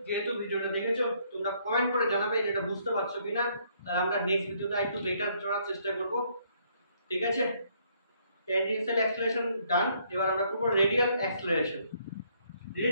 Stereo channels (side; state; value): both; inverted; correlation -0.68